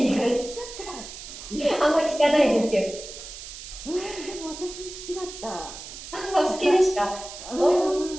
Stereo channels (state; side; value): noise; right; hiss, 12 dB below the sound